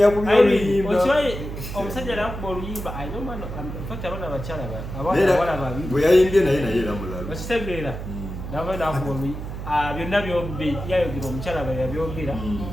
oluyimba omusajja nakuba oluyimba fakta abana bakyala abana babiri bwe yayimbye naye era mulalo okitegeera nabo nakuba oluyimba byonna byombi yayogera omukyala bwe yabyogera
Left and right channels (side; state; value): right; noise; hum, 8 dB below the sound